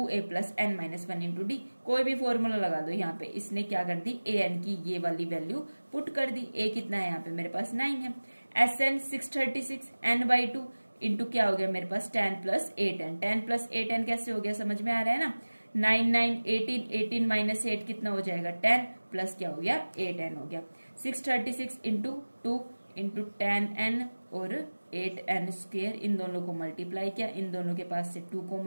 plus N minus one into d. कोई भी फॉर्मूला लगा दो यहाँ पे। इसने क्या कर दी, ए एन की ये वाली वैल्यू पुट कर दी। ए कितना है यहाँ पे मेरे पास 9 है, S n 636, n by two into क्या हो गया मेरे पास 10 प्लस 8n। 10 प्लस 8n कैसे हो गया, समझ में आ रहा है ना, 9 9 18, 18 माइनस 8 कितना हो जाएगा 10 प्लस क्या हो गया 8n हो गया। 636 इंटू 2 इंटू 10n और 8n स्क्वायर, इन दोनों को मल्टीप्लाई किया, इन दोनों के पास से 2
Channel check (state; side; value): inverted; both; correlation -1.00